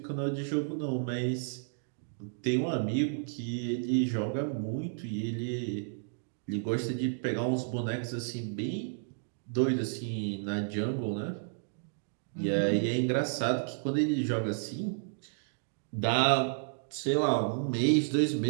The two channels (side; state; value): left; silent; digital silence